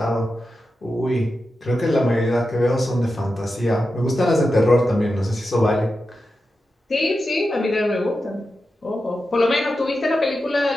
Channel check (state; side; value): normal; both; correlation 0.90